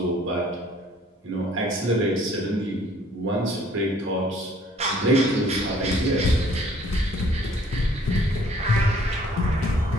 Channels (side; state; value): both; normal; correlation 0.58